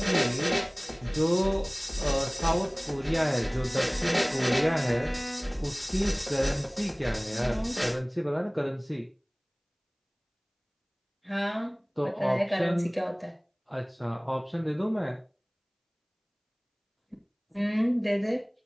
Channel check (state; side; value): identical; both; correlation 1.00